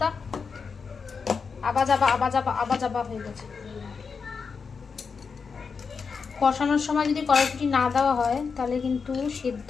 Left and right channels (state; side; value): quieter; right; 5.4 dB